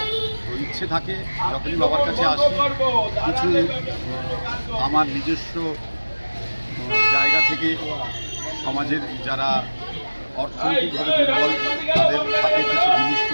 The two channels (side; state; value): both; inverted; correlation -1.00